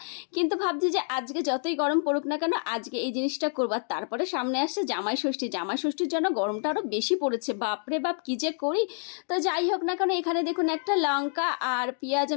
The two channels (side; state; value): right; silent; 59 dB below the other